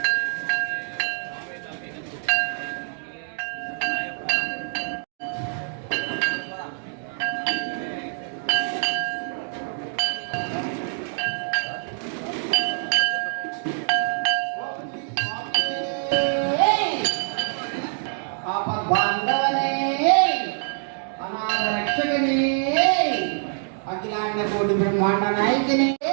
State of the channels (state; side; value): silent; left; 62 dB below the other